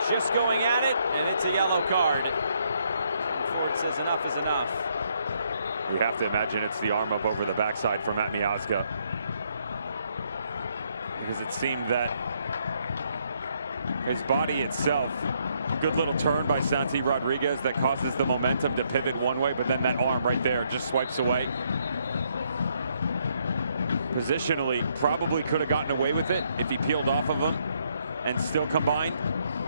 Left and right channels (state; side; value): inverted; both; correlation -0.73